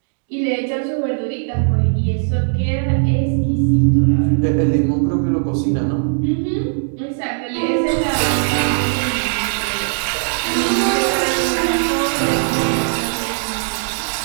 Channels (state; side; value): silent; left; 67 dB below the other